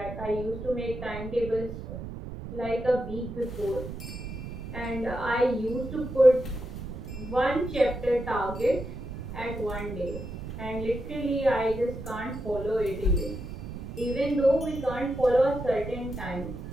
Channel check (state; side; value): noise; right; rumble, 9 dB below the sound